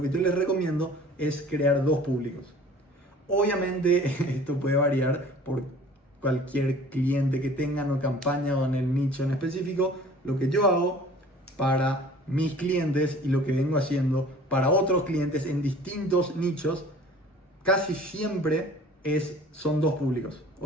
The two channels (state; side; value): normal; both; correlation 0.48